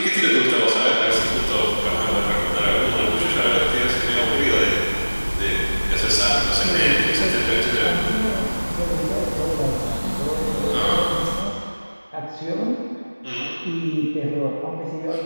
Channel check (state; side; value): inverted; both; correlation -1.00